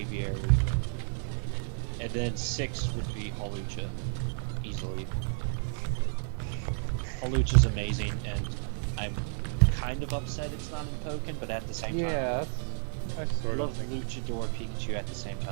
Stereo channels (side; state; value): left; silent; digital silence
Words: And then 6 would be Hawlucha, easily. Hawlucha's amazing, and I'm kind of upset it's not in Pokken, but at the same time, Yeah, I sort love of think Luchador Pikachu at the same